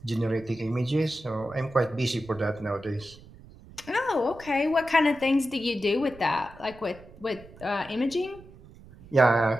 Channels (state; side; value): noise; right; rumble, 21 dB below the sound